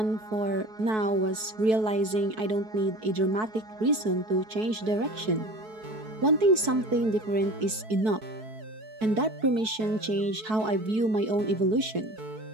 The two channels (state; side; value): late; left; 4.6 ms